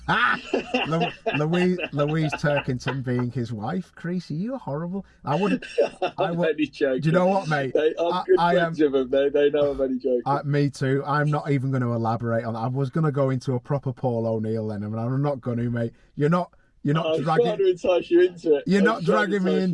Louise Turkington being his wife, Creasy, you're horrible. I'm only joking. Do you know what, mate? I'm good friends with them. They know I'm only joking. Me too. I'm not even going to elaborate on that. I was going to go into a proper Paul O'Neill then, and I'm not going to, mate. You're not I'm dragging. trying to entice you into it. You're not dragging me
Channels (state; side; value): identical; both; correlation 1.00